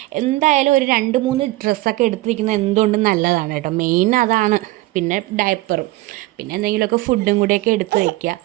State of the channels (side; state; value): left; quieter; 18.7 dB